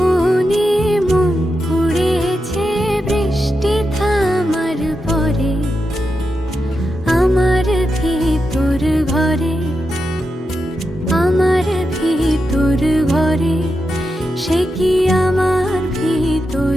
মন পুড়েছে বৃষ্টি থামার পরে আমার ভিতর ভরে আমার ভিতর ভরে সে কি আমার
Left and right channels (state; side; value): normal; both; correlation 0.88